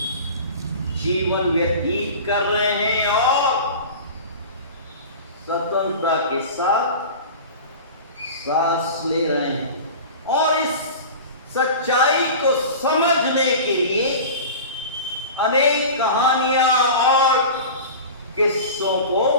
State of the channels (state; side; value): inverted; both; correlation -0.34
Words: जीवन व्यतीत कर रहे हैं और स्वतंत्रता के साथ सांस ले रहे हैं। और इस सच्चाई को समझने के लिए अनेक कहानियां और किस्सों को